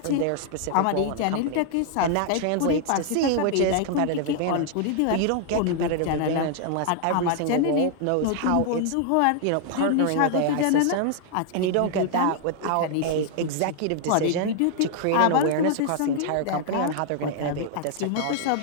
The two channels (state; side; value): different; both; correlation 0.00